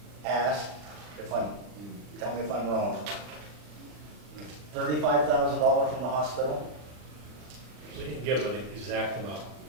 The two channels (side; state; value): left; late; 40 ms